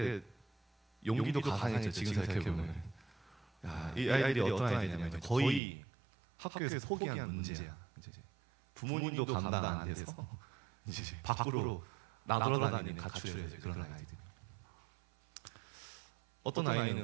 용기도 가상했죠. 지금 생각해보면. 야, 이 아이들이 어떤 아이들이냐면 이제 거의 학교에서 포기한 문제야. 이제 부모님도 감당 안 돼서 이제 밖으로 나돌아다니는 가출해서 이제 그런 아이들이. 어떤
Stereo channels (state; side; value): drops out; left; at 5.6 s